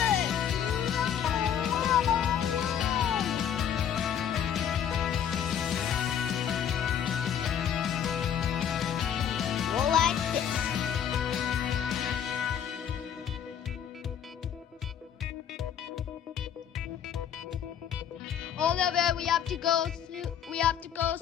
Oliver, we have to go soon. We have to go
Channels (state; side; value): quieter; right; 8.8 dB